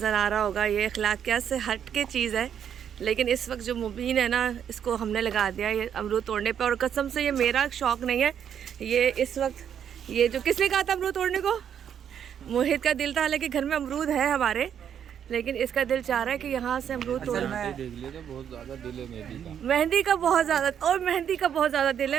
आ रहा होगा ये अखलाकियात से हट के चीज़ है, लेकिन इस वक्त जो मुबीन है ना, इसको हमने लगा दिया ये अमरूद तोड़ने पे। और कसम से ये मेरा शौक़ नहीं है, ये इस वक्त ये जो किसने कहा था अमरूद तोड़ने को? मोहित का दिल था। हालांकि घर में अमरूद है हमारे, लेकिन इसका दिल चाह रहा है कि यहाँ से अमरूद तोड़ना है। देख लिया तो बहुत ज़्यादा दिल है मेहंदी का बहुत ज़्यादा, और मेहंदी का बहुत ज़्यादा दिल है।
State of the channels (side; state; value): left; quieter; 8.7 dB